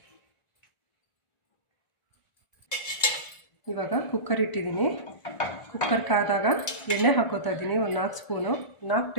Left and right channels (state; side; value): late; right; 1.4 ms